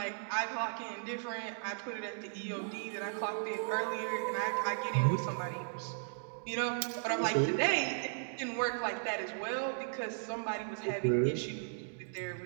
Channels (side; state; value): left; silent; digital silence